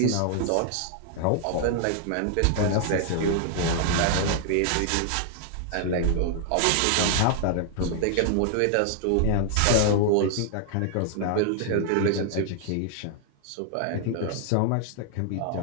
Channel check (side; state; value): both; different; correlation 0.00